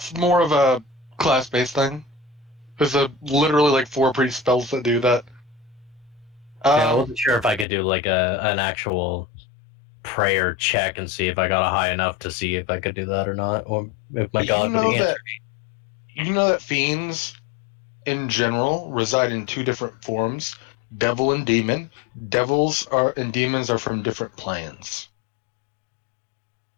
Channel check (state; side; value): drops out; right; at 7.7 s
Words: more of a class-based thing. There's literally like 4 priest spells that do that. Yeah, I wasn't sure if I could do like an actual prayer check and see if I got a high enough to see if I could do that or not, or if my god would answer. You know that fiends, in general, reside in 2 different forms: devil and demon. Devils and demons are from different planes.